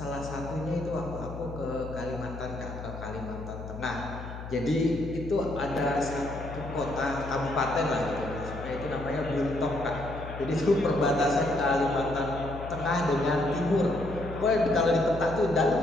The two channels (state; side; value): noise; left; hum, 10 dB below the sound